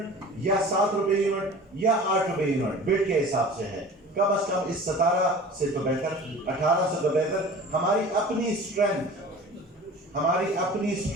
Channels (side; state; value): both; normal; correlation 0.41